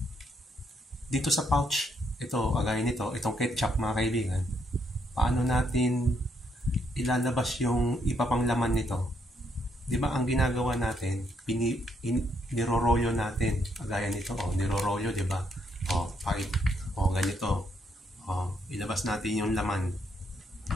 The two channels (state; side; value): normal; both; correlation 0.74